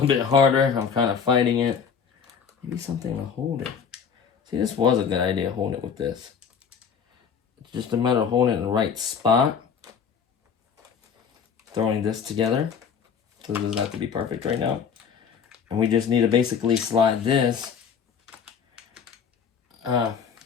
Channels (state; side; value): quieter; right; 6.8 dB